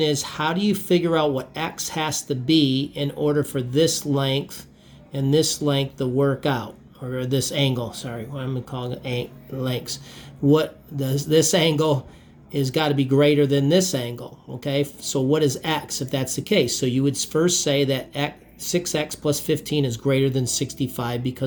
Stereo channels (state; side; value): identical; both; correlation 1.00